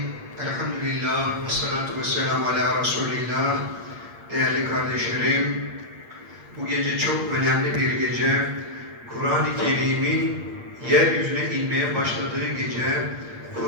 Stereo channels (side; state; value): left; late; 8.6 ms